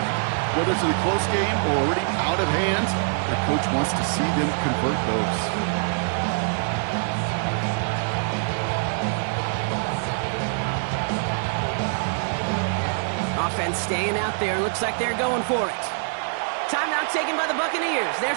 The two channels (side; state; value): left; silent; digital silence